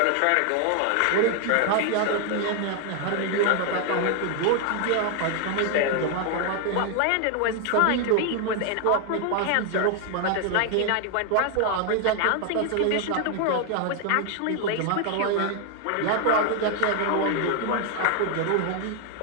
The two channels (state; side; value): different; both; correlation 0.00